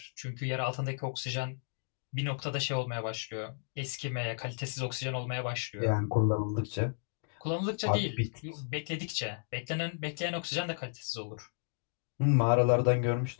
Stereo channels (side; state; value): right; silent; digital silence